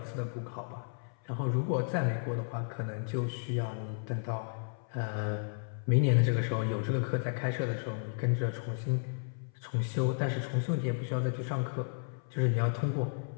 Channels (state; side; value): silent; right; 56 dB below the other